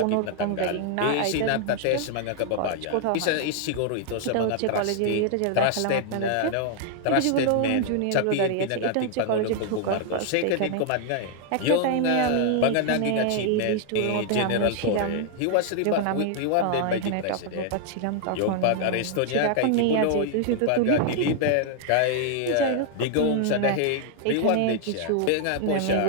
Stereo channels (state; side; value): different; both; correlation 0.00